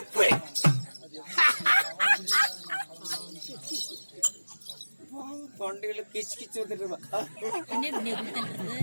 தொண்டையில கிச்சு கிச்சு வந்துட்டு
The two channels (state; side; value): inverted; both; correlation -1.00